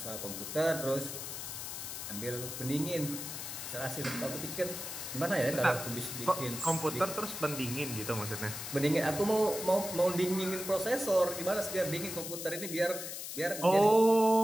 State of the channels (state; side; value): noise; left; hiss, 7 dB below the sound